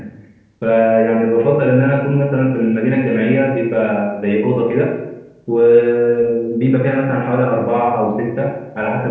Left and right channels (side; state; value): both; identical; correlation 1.00